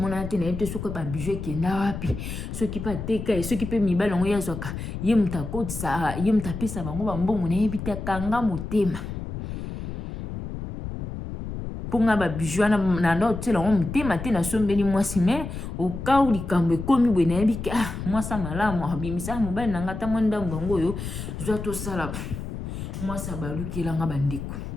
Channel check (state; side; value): noise; left; rumble, 7 dB below the sound